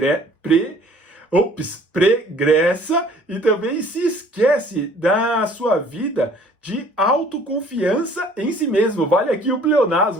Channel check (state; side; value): normal; both; correlation 0.54